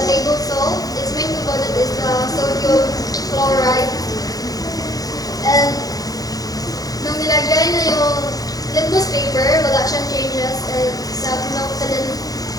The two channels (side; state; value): right; late; 0.18 ms